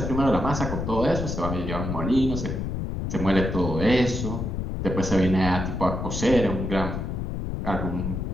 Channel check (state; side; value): noise; left; rumble, 3 dB below the sound